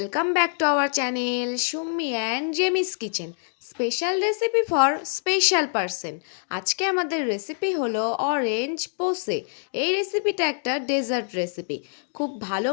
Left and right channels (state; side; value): silent; right; digital silence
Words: back to our channel Summi and Jemis kitchen. Special recipe for special person. আজকে আমাদের recipe হলো orange পোসে। এই রেসিপিটা একটা ডেজার্ট রেসিপি। খুব ভালো